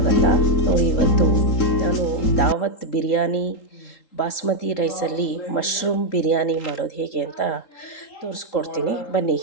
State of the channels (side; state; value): right; late; 3.8 ms